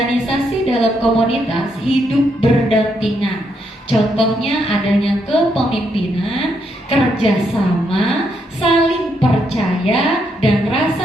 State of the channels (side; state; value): both; normal; correlation 0.77